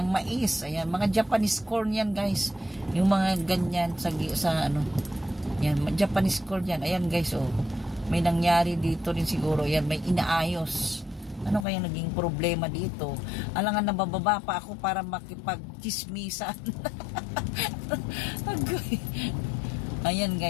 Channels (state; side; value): drops out; right; at 11.7 s